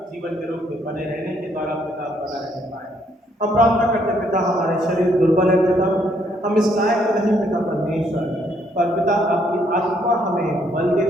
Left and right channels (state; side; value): normal; both; correlation 0.69